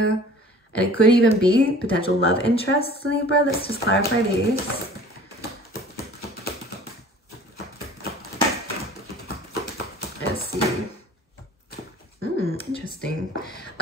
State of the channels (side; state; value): both; normal; correlation 0.47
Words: And it could even be potential love interests, Libra. Let's just clarify these. Let's see. Interesting.